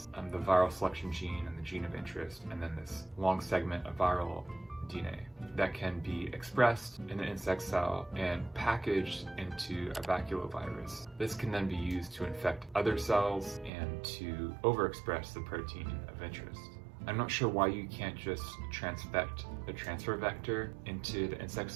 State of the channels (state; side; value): drops out; left; at 13.7 s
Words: the viral selection gene and the gene of interest, and then this long segment of viral DNA that can be expressed in an insect cell and packaged into a baculovirus. This can then be used to infect other cells and to overexpress the protein of interest. I'm not sure why you can't just transfect the transfer vector into the insect